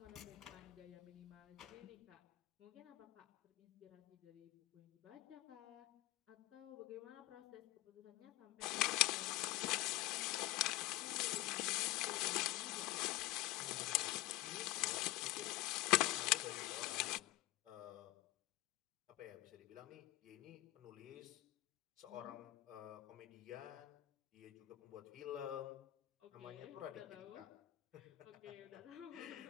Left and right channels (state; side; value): quieter; right; 17.4 dB